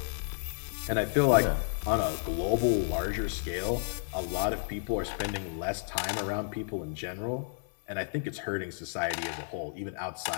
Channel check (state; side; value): silent; right; 57 dB below the other